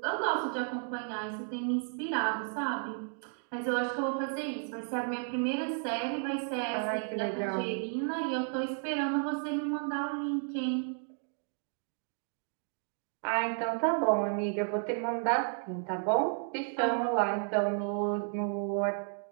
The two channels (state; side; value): silent; left; 56 dB below the other